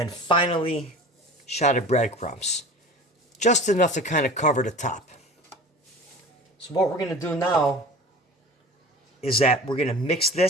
finally, a shot of breadcrumbs. Just enough to kind of cover the top. So what we're going to do now is that we're going to mix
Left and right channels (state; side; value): normal; both; correlation 0.38